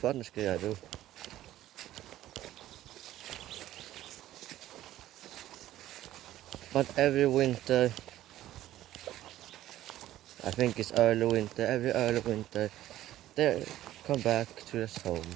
things I do. But every winter, I think it's early winter, every early winter, they come back to their homes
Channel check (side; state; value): left; quieter; 13.8 dB